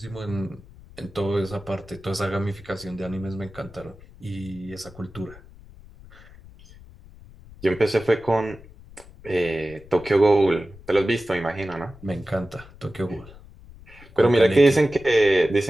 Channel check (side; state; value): left; noise; rumble, 21 dB below the sound